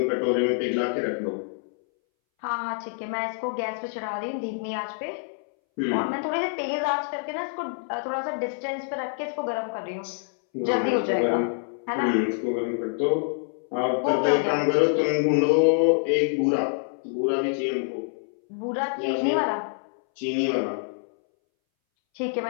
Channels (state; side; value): silent; right; 61 dB below the other